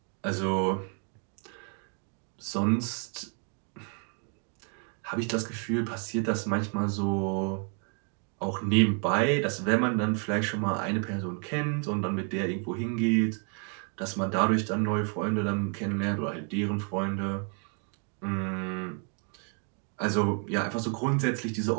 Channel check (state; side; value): quieter; left; 38.4 dB